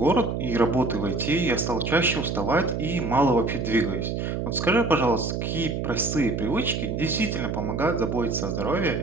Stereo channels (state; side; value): noise; right; hum, 2 dB below the sound